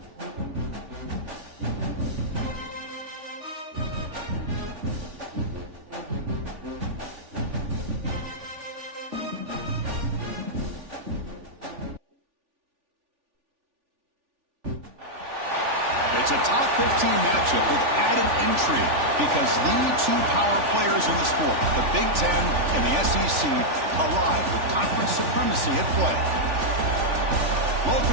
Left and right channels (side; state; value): left; late; 3.4 ms